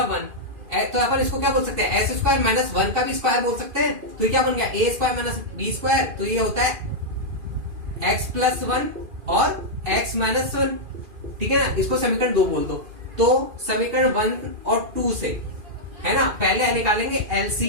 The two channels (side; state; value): left; late; 2.4 ms